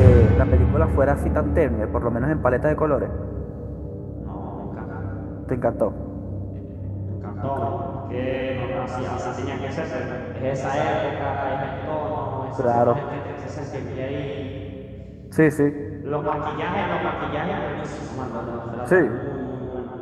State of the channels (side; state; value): both; identical; correlation 1.00